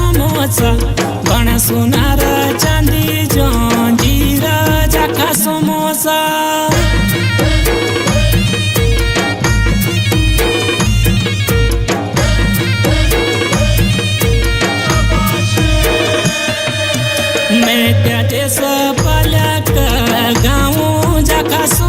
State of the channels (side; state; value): both; identical; correlation 1.00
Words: बना सोनार चांदी जंजीरा जाका समोसा मैं त्याचे